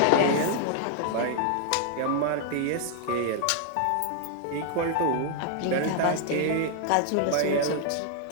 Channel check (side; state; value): both; different; correlation 0.00